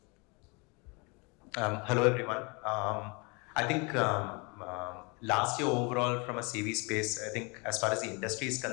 Hello everyone. I think last year overall from a CV space, I think as far as the industry is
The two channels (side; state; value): right; quieter; 30.2 dB